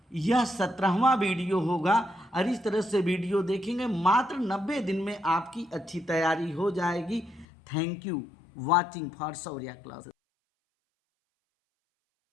यह 17वां वीडियो होगा। और इस तरह से वीडियो देखेंगे, मात्र 90 दिन में आपकी अच्छी तैयारी हो जाएगी। Thank you watching for Shaurya classes.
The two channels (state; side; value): drops out; right; at 7.5 s